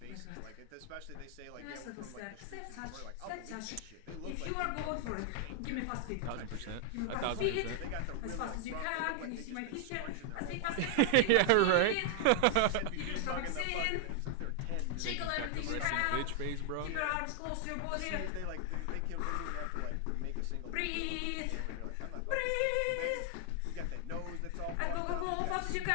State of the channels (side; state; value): both; different; correlation 0.00